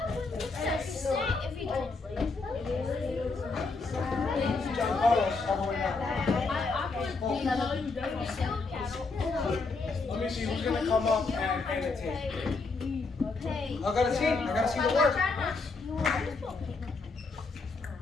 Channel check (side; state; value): right; quieter; 4.0 dB